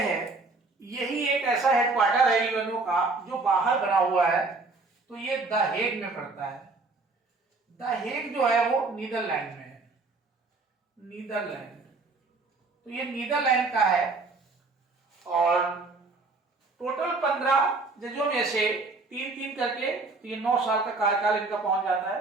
यही एक ऐसा हेडक्वार्टर है यूएनओ का जो बाहर बना हुआ है, तो ये द हेग में पड़ता है। द हेग जो है वो नीदरलैंड में है, नीदरलैंड। तो ये नीदरलैंड का है और टोटल 15 जजों में से 3-3 करके 9 साल का कार्यकाल इनका पहुंच जाता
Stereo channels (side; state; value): left; quieter; 3.7 dB